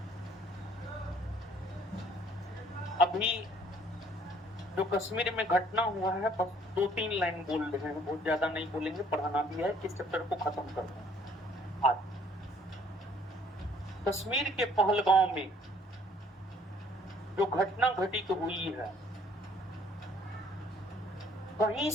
अभी जो कश्मीर में घटना हुआ है बस 2-3 लाइन बोल रहे हैं, बहुत ज्यादा नहीं बोलेंगे, पढ़ाना भी है, इस चैप्टर को खत्म करना है आज। कश्मीर के पहलगांव में जो घटना घटित हुई है, कहीं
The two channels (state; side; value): normal; both; correlation 0.60